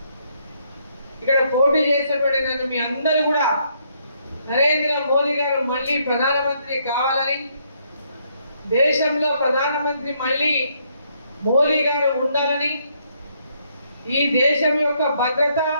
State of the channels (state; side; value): inverted; both; correlation -0.72